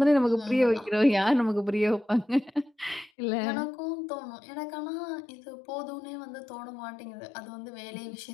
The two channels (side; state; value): right; drops out; at 3.1 s